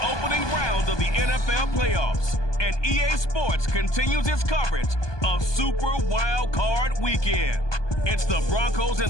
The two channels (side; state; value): right; late; 1.2 ms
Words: opening round of the NFL playoffs, and EA Sports continues its coverage of Super Wild Card Weekend. It's the Broncos